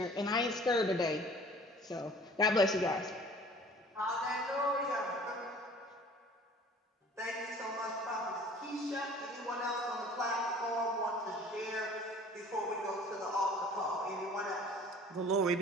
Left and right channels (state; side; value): normal; both; correlation 0.49